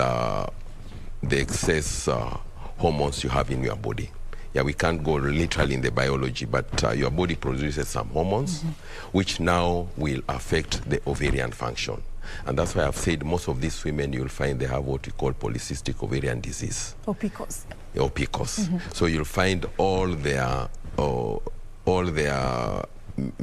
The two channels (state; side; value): identical; both; correlation 1.00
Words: excess hormones you have in your body. Yeah, we can't go literally in the biology, but your body produces some hormones which now will affect the ovarian function. And that's why I've said most of these women, you'll find they have what we call polycystic ovarian disease. Or PCOS. Or PCOS. So you'll find all their